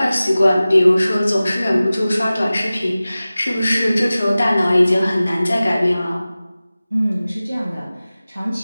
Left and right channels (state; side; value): inverted; both; correlation -0.97